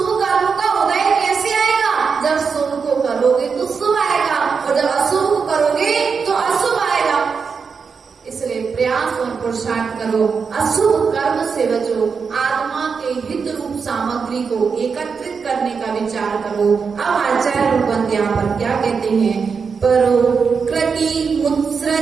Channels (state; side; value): quieter; left; 5.6 dB